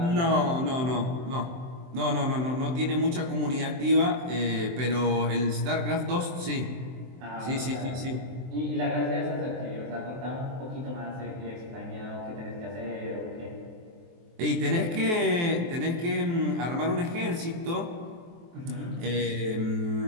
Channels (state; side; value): late; left; 23 ms